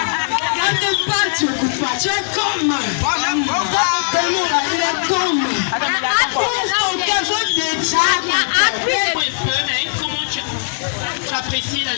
tu parles, tu n'écoutes pas. Tu es comme. Il est comme. Comment tu apprécies la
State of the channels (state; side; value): silent; right; digital silence